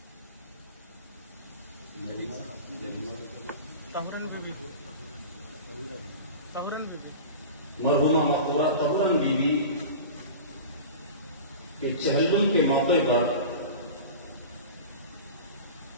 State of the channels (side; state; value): both; inverted; correlation -0.33